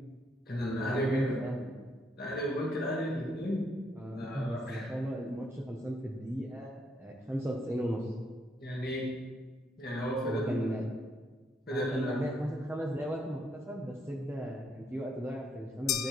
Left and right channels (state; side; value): normal; both; correlation 0.73